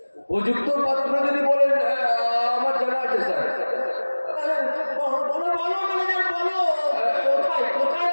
উপযুক্ত পাত্র যদি বলেন আমার জানা আছে স্যার। বলো বলো ম্যানেজার বলো, কোথায় কোথায়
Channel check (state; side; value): inverted; both; correlation -1.00